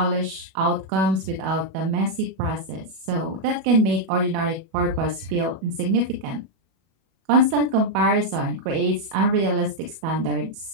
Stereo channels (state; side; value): late; left; 37 ms